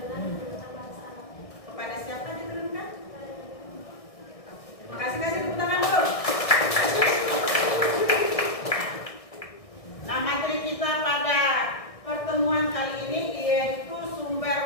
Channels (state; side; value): late; right; 1.6 ms